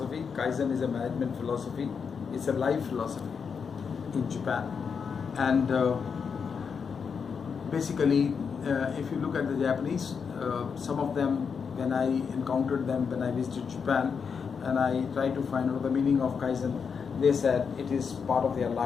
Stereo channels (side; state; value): right; quieter; 6.1 dB